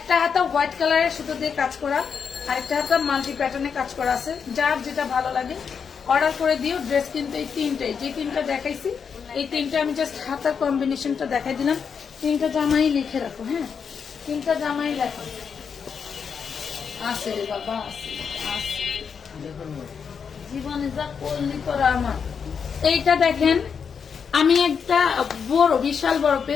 হাতা হোয়াইট কালারের সুতো দিয়ে কাজ করা, আরেকটা হাতা মাল্টি প্যাটার্নে কাজ করা আছে। যার যেটা ভালো লাগে অর্ডার করে দিও। ড্রেস কিন্তু এই তিনটাই, যে তিনটা দেখাইছি এই তিনটা আমি জাস্ট হাতার কম্বিনেশনটা দেখাই দিলাম। তিনটা জামাই লিখে রাখো। হ্যাঁ, তিনটা জামাই লেখো। আছে রে বাবা, আছে আছে, জীবনে যা করলি তোরা আমার। এইটা দেখেন, আমি একটা বড় বিশাল বড়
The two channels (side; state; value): right; quieter; 6.5 dB